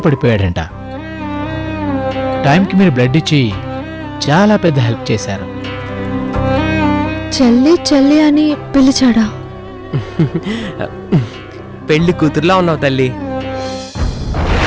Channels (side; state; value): both; identical; correlation 1.00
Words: పడిపోయాడంట. టైంకి మీరు బ్లడ్ ఇచ్చి చాలా పెద్ద హెల్ప్ చేశారు. చెల్లి చెల్లి అని పిలిచాడా? పెళ్లి కూతురులా ఉన్నావు తల్లి.